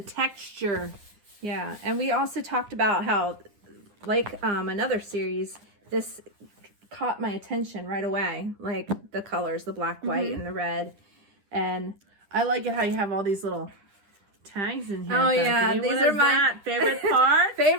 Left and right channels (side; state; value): left; late; 9.9 ms